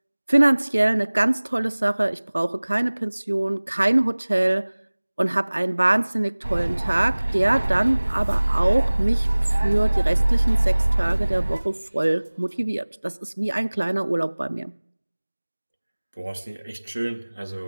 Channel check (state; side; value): inverted; both; correlation -1.00